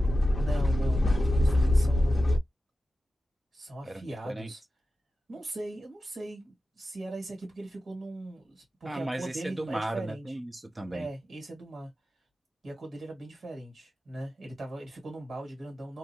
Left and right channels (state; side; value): normal; both; correlation 0.93